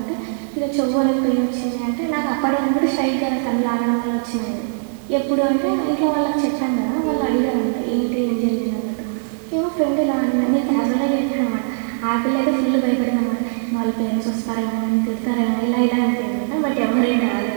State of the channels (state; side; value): silent; left; digital silence